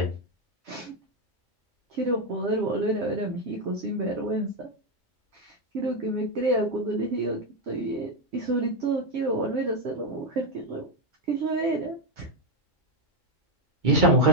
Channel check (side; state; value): both; normal; correlation 0.05